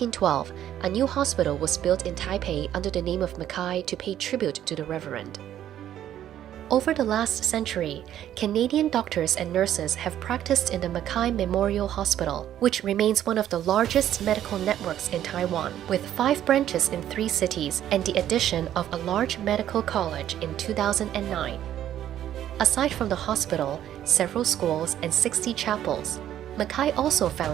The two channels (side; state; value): left; quieter; 11.4 dB